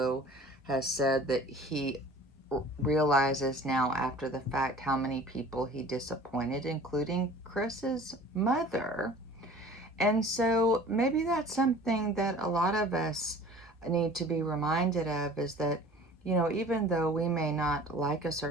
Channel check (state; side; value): normal; both; correlation 0.46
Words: has said that he realizes now after the fact how many people he disappointed, including Chris's mother. And so maybe that's something that a lot of us need to be reminded of, is that, even though we may not like a